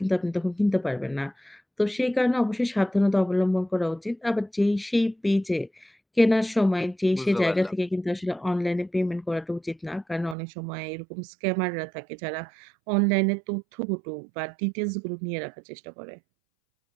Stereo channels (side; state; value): left; drops out; at 10.4 s